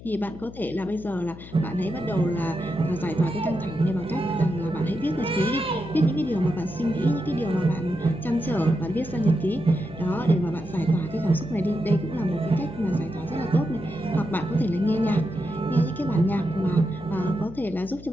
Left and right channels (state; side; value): noise; left; hum, 16 dB below the sound